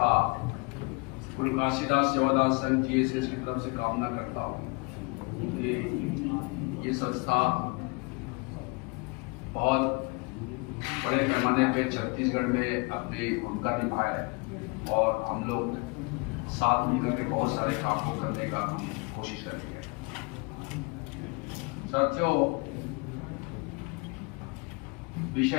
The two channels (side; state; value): right; quieter; 29.2 dB